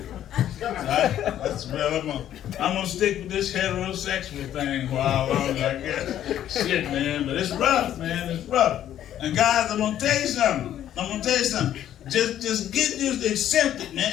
So that's well, I'm gonna stick with this heterosexual thing for how long I guess. Shit, man, but it's rough, man. It's rough. And guys, I'm gonna tell you something. Just get used to accept it, man.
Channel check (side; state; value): right; quieter; 11.3 dB